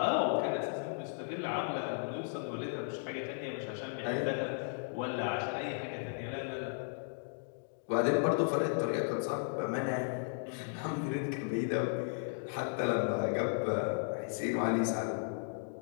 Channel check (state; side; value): silent; right; digital silence